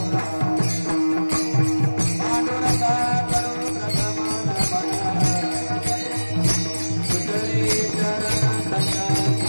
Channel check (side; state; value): both; inverted; correlation -1.00